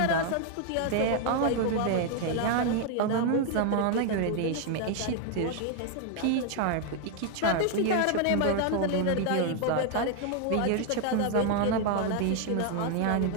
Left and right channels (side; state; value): both; different; correlation 0.01